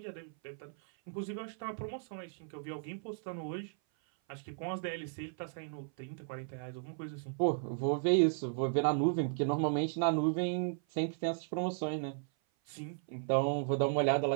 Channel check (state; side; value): silent; left; 54 dB below the other